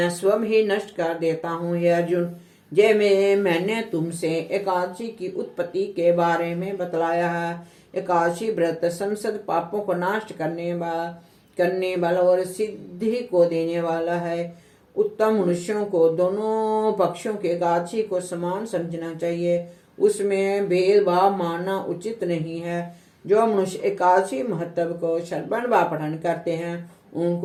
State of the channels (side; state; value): both; identical; correlation 1.00